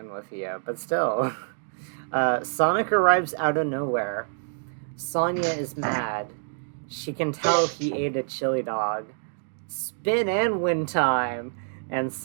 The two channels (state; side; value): silent; left; digital silence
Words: with yeah, but still. Sonic arrives out of nowhere. Sonya is mad. She can tell he ate a chili dog. Spin and win time! And